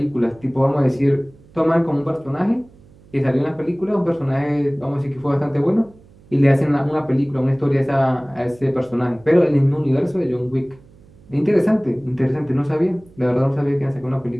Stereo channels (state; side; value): noise; right; hum, 26 dB below the sound